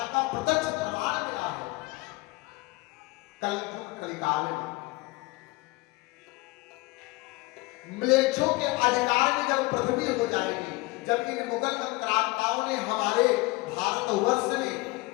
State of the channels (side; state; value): right; quieter; 22.9 dB